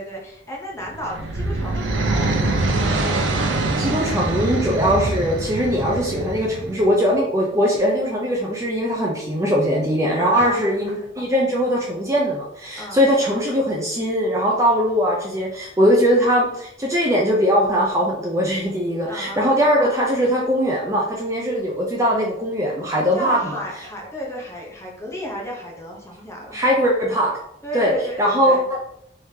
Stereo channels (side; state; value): both; normal; correlation 0.37